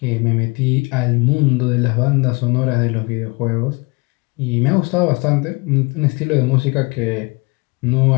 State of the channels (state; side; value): quieter; right; 27.9 dB